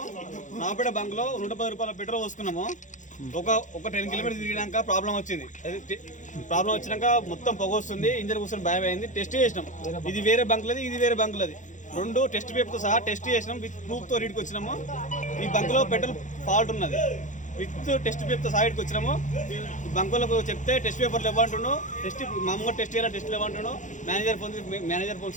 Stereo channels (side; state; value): right; late; 0.36 ms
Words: నాపేట బంక్లో 110 రూపాయల పెట్రోల్ పోసుకున్నాము. ఒక 10 కిలోమీటర్స్ తిరిగినాక ప్రాబ్లం వచ్చింది. ప్రాబ్లం వచ్చినాక మొత్తం పొగ వస్తుంది, ఇంజన్ కూర్చొని భయం అయింది. టెస్ట్ చేసినాం, ఇది వేరే బంకులది, ఇది వేరే బంకులది. 2 టెస్ట్ పేపర్తో సహా టెస్ట్ చేసినాం. విత్ ప్రూఫ్తో రీడ్కి వచ్చినాము. ఈ బంకులో పెట్రోల్ ఫాల్ట్ ఉన్నది. విత్ టెస్ట్ పేపర్తో సహా ఇటుకు వచ్చినాము. బంకులకు చెప్తే టెస్ట్ పేపర్లు ఇవ్వంటున్నాను, మామూలుగా టెస్ట్ చేయాలి, టెస్ట్లు ఇవ్వంటున్నాను. మేనేజర్ ఫోన్